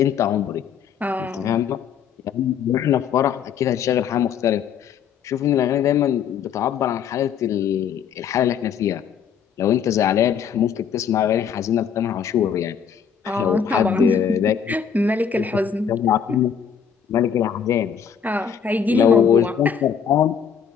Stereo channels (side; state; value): right; quieter; 7.5 dB